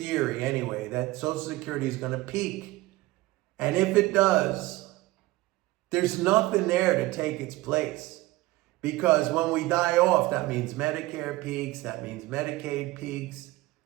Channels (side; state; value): left; quieter; 19.3 dB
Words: anyway, that Social Security is going to peak, and if it does, there's nothing there to take its place, because when we die off, that means Medicare peaks, that means Medicaid peaks.